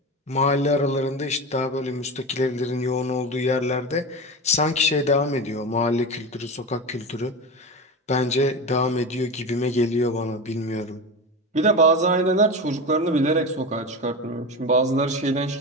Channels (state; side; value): normal; both; correlation 0.24